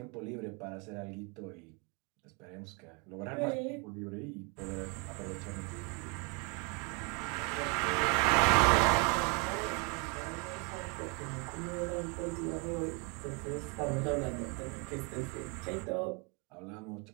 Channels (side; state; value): left; quieter; 31.3 dB